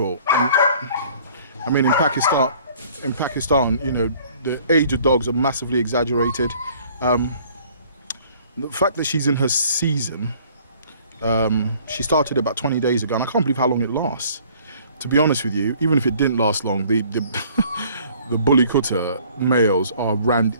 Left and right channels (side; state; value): both; inverted; correlation -0.56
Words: I mean, in Pakistan, you know, the age of dogs are massively exaggerated. The fact that she's in her season, she started about 20 days ago, and I can't believe how long it lasts. To be honest with you, even if it didn't last long, the bully Kutta males